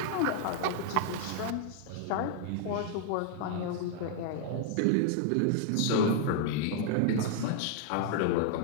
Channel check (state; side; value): different; both; correlation -0.01